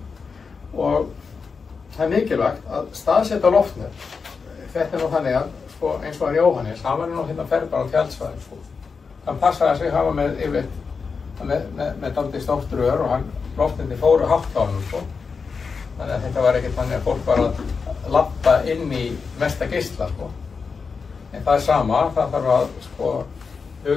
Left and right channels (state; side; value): quieter; right; 5.2 dB